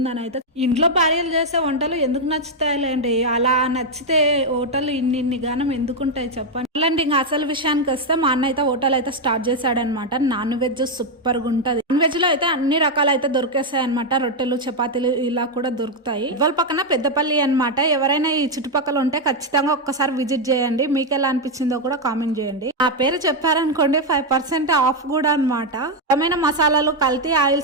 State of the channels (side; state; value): both; normal; correlation 0.02